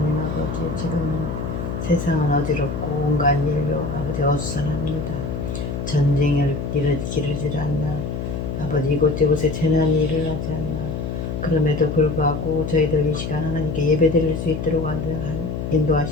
아버지, 지금 세상은 어지럽고 온갖 일로 아버지 어수선합니다. 전쟁을 기르질 않나, 아버지 이곳저곳에 재난이 일어나지 않나. 그럼에도 불구하고 저희들 이 시간 하나님께 예배드릴 수 있도록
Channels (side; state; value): left; noise; hum, 4 dB below the sound